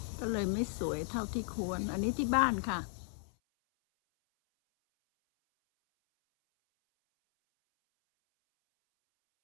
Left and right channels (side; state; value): right; silent; 55 dB below the other